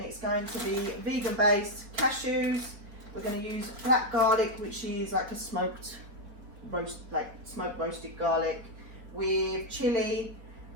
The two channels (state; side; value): late; left; 4.7 ms